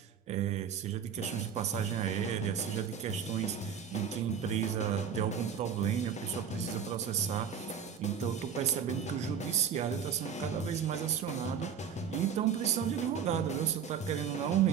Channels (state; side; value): quieter; left; 7.5 dB